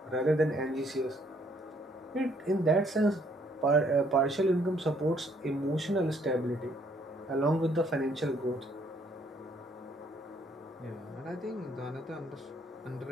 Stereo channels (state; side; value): normal; both; correlation 0.66